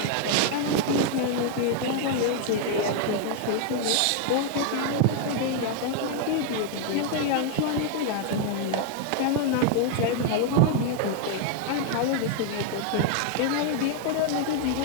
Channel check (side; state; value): both; different; correlation 0.00